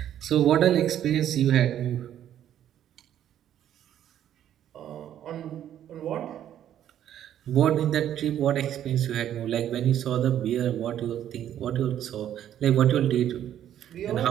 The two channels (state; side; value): quieter; left; 10.8 dB